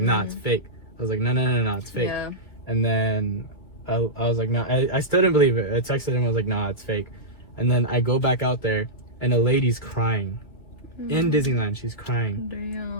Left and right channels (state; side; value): late; right; 2.5 ms